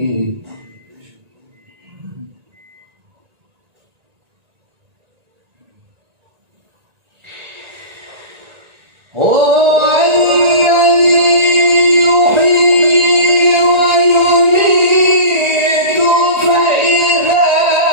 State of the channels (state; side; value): late; left; 1.9 ms